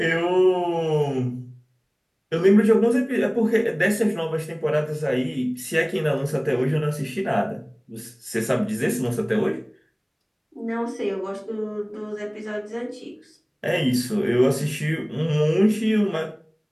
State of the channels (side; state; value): both; identical; correlation 1.00